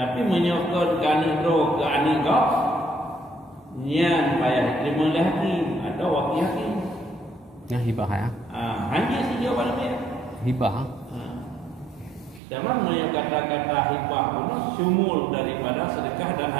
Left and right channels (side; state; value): left; drops out; at 12.4 s